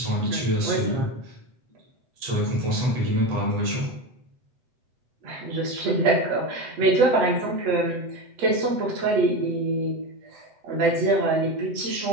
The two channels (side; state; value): left; late; 7.9 ms